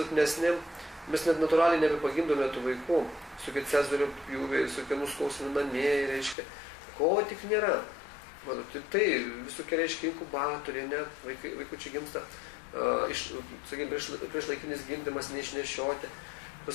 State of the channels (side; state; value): right; drops out; at 6.4 s